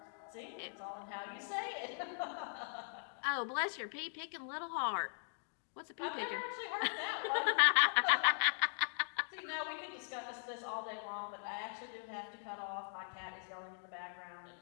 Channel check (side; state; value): right; silent; digital silence